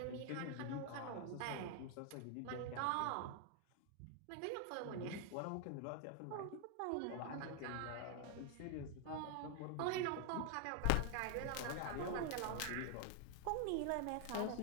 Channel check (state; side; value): different; both; correlation 0.00